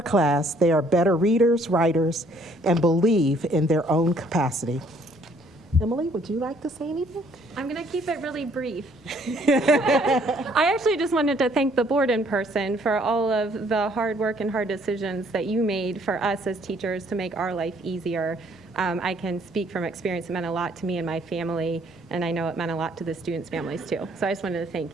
they are better readers, writers, and believe in their own capacity. Emily, would you like to say anything? I'm going to keep it really brief. I actually just wanted to thank the board in person for all of the hard work and hard decisions that you made for us as teachers to make our life easier. I can speak from experience. It meant a lot to me and my family, and I know it meant a lot to the students' families too. So I just wanted to thank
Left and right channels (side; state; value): both; normal; correlation 0.63